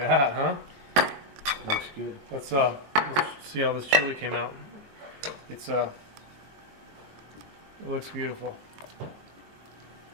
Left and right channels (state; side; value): late; left; 22 ms